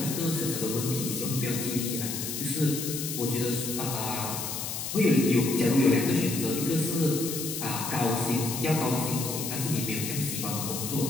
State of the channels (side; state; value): left; noise; hiss, 5 dB below the sound